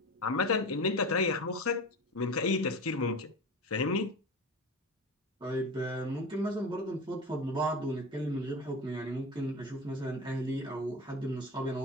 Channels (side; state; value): both; normal; correlation 0.29